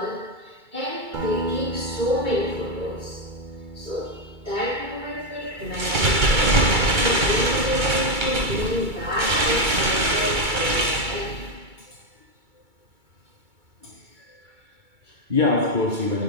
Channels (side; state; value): left; late; 2.3 ms